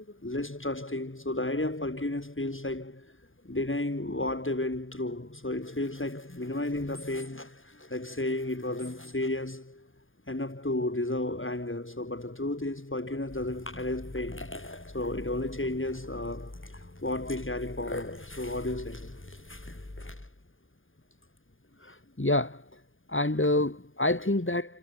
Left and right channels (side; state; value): right; late; 0.59 ms